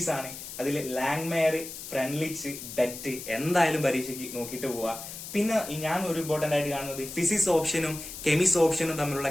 ആണ്. അതിൽ ലാങ്മയർ, ഫ്രെൻലിച്ച്, ബെറ്റ് എന്തായാലും പരീക്ഷയ്ക്ക് നോക്കിയിട്ട് പോവാ. പിന്നെ ഞാൻ ഒരു ഇമ്പോർട്ടന്റ് ആയിട്ട് കാണുന്നത് ഫിസിക്സ് ഓപ്ഷനും കെമിസ് ഓപ്ഷനും തമ്മിലുള്ള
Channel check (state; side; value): noise; left; hiss, 10 dB below the sound